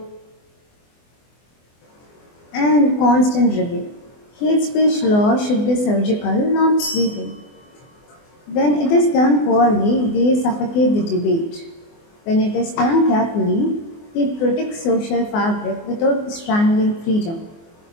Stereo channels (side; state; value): right; late; 24 ms